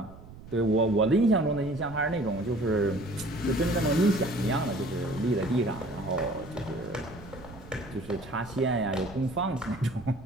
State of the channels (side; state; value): right; noise; rumble, 17 dB below the sound